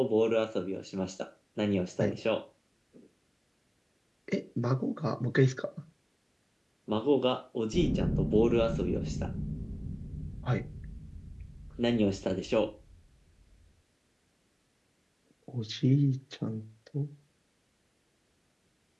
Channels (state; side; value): identical; both; correlation 1.00